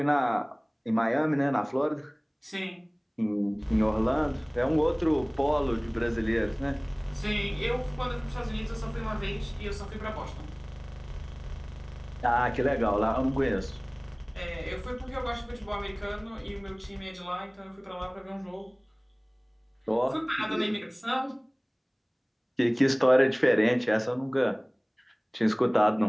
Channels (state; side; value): identical; both; correlation 1.00